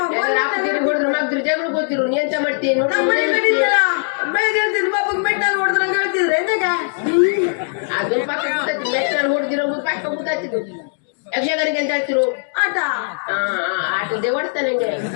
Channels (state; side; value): silent; right; digital silence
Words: ಹೊಡೆದ್ರೆ ಮಗ್ದ್ರು ಜಗಳ ಗೊತ್ತಿರು. ನೀ ಎಂತ ಮಾಡ್ತೀನಿ ಬೆಳಗ್ಗೆ ಹೇಳ್ತಿದ್ರು ಪಾಪಕ್ಕೆ ಮೆಟ್ಟಲ್ಲಿ ಹೊಡೆದ್ರು ನಂಗೆ ಹೇಳ್ತಿದ್ರು ಎಂತಾಗ. ಅದು ಪಕ್ಕ ಗೊತ್ತಾಯ್ತು. ಮೆಟ್ಟಲ್ಲಿ ಹೊಡೆದಿರೋ ಪಕ್ಕ ಗೊತ್ತಾಯ್ತಿದ್ದು. ಯಕ್ಷಗಾನಿಗೆ ಅಂತ ಹೇಳ್ತಿರು ಆಟ. ಆಟದೇ ಹೊಡ್ತಾ ನಂಗೆ.